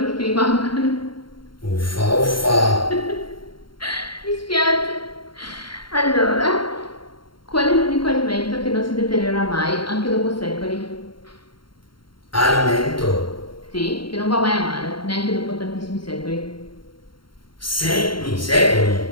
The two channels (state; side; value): late; right; 0.73 ms